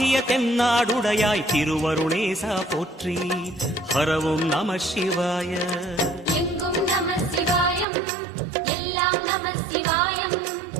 தென்னாடுடையாய் திருவருணேசா போற்றி ஹரவும் நம சிவாய எங்கும் நம சிவாயம் எல்லாம் நம சிவாயம்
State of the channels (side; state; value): left; drops out; at 7.9 s